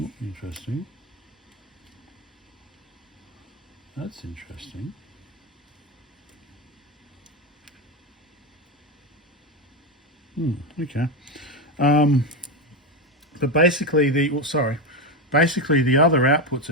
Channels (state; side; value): normal; both; correlation 0.12